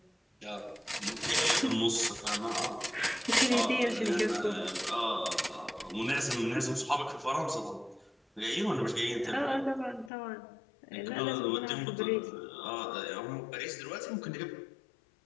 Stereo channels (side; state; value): right; drops out; at 10.1 s